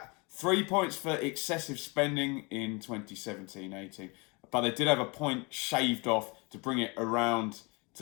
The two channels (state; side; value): quieter; right; 28.7 dB